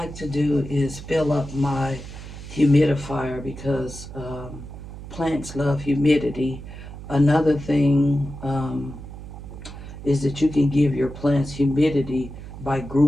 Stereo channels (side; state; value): right; noise; hum, 12 dB below the sound